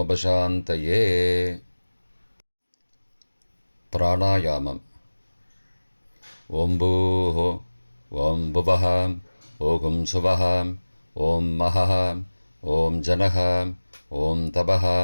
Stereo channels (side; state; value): both; inverted; correlation -1.00